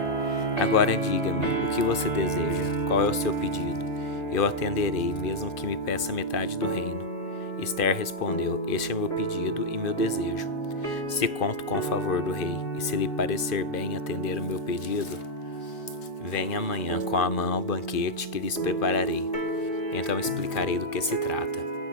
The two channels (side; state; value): right; late; 2.5 ms